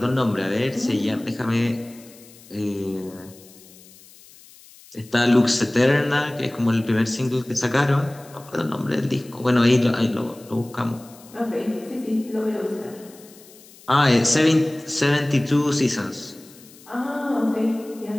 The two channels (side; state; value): left; noise; hiss, 23 dB below the sound